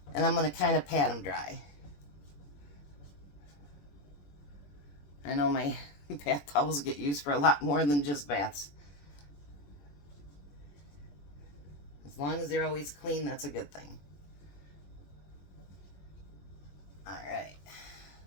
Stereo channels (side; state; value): right; late; 21 ms